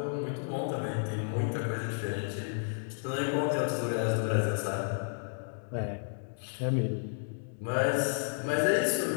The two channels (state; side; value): silent; right; digital silence